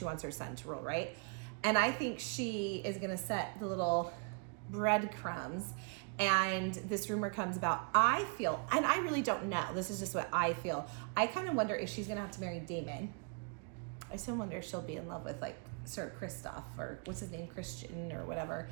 wants her son to rule, right? And I think she is going to set the little breadcrumbs, and this rumor comes about. I feel, and I really don't know, this is just what I feel, I kind of wonder if she's gonna have to marry Daemon. I still wonder if she'll be in love with like Sir Kristoff, or what's his name, Christian or whatever,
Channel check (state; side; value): quieter; left; 35.3 dB